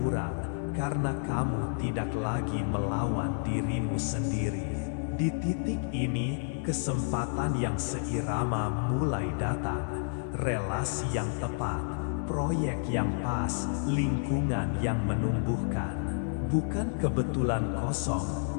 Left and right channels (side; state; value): right; silent; digital silence